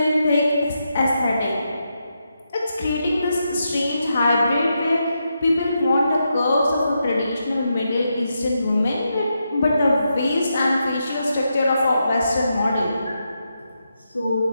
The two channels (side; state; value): both; inverted; correlation -0.84